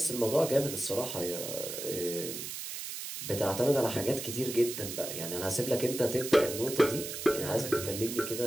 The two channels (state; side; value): noise; right; hiss, 7 dB below the sound